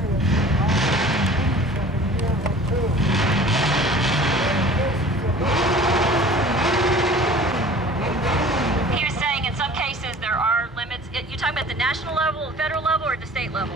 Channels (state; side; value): normal; both; correlation 0.45